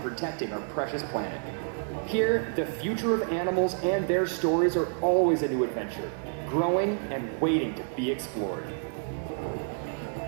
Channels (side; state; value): left; silent; digital silence